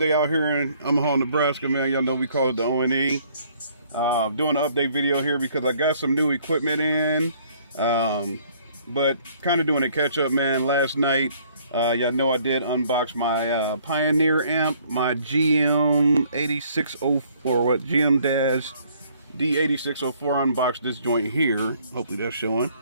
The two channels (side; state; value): both; inverted; correlation -0.62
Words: out here in Omaha, Nebraska, man. Y'all know we call it the ONE. Doing an update video here because I got some new equipment in. But kind of doing a catch up, man. Last night, y'all know I did unbox my Pioneer amp, my GM8604, GM-D8604. Unboxed this joint here. Hopefully that's showing.